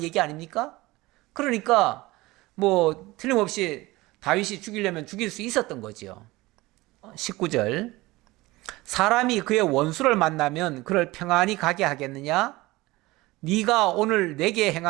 얘기 아닙니까? 그러니까 뭐 틀림없이 다윗이 죽이려면 죽일 수 있었던 거지요. 19절, 사람이 그의 원수를 만나면 그를 평안히 가게 하겠느냐? 네가 오늘 내게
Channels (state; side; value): quieter; left; 20.2 dB